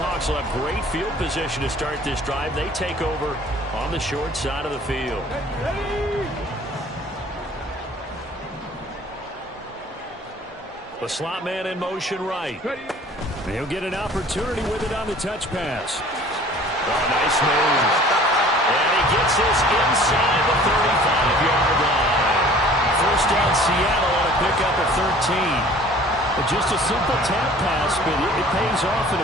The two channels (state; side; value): normal; both; correlation 0.50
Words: will have great field position to start this drive. They take over on the short side of the field. The slot man in motion right. He'll get an opportunity with it on the touch pass. Oh, nice move. And he gets this inside the 35-yard line. First down Seattle on a pickup of 13. But just a simple tap pass, but it pays off in